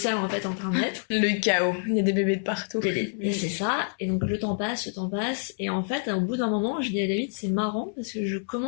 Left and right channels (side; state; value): right; silent; 59 dB below the other